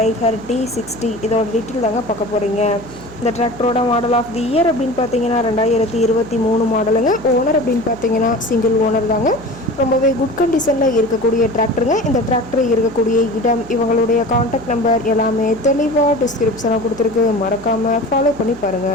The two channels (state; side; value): noise; left; hum, 21 dB below the sound